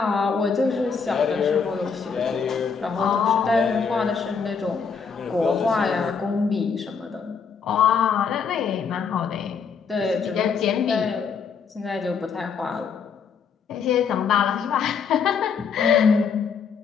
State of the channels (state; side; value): quieter; right; 6.0 dB